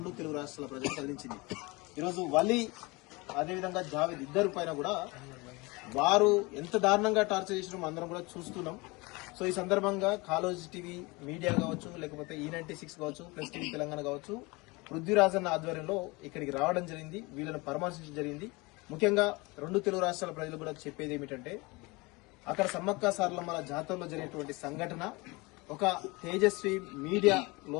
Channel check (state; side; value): quieter; right; 24.9 dB